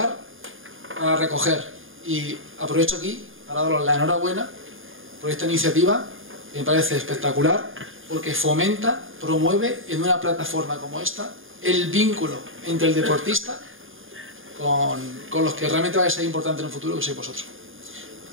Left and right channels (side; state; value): left; late; 0.59 ms